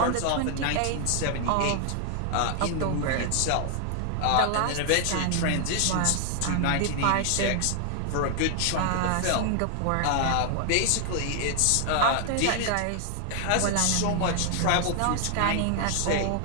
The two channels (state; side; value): different; both; correlation 0.00